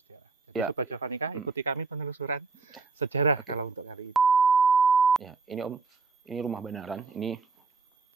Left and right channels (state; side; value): quieter; left; 4.4 dB